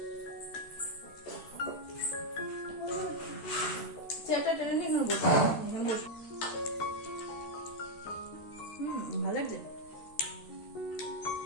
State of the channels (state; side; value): late; right; 13 ms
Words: চেয়ারটা টেনে নিয়ে এখানে বসে, ভালো লাগছে।